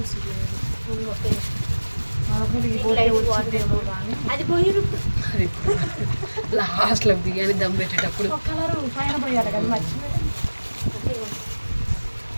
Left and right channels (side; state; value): both; inverted; correlation -1.00